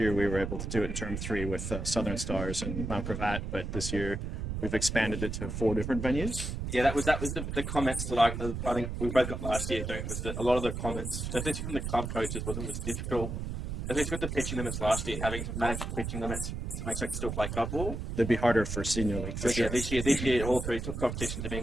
we were able to do it in term 3 with Southern Stars and Mount Gravatt, but this year we've expanded it to 4 different venues. Yeah, that was the comments that I think we both got last year doing it, was that a lot of the comments, especially from the club coaches, was it was difficult, especially with the pitching limits last year, having to manage the pitching limits to make sure they could still play club ball. It'd be harder for senior league. Whereas this year all 3 competitions are being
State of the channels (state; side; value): noise; right; rumble, 4 dB below the sound